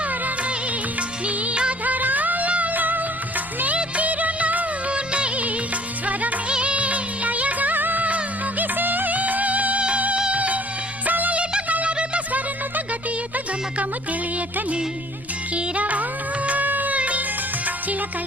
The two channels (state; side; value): noise; left; rumble, 20 dB below the sound